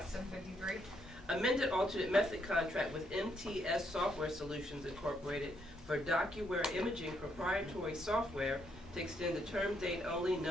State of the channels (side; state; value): both; normal; correlation 0.75